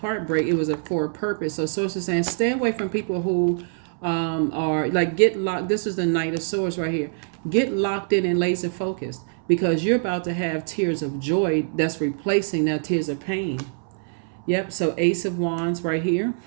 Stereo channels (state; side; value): silent; left; 62 dB below the other